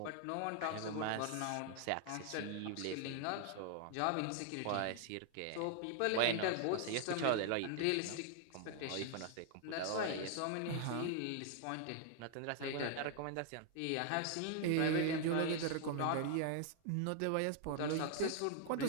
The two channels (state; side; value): different; both; correlation 0.00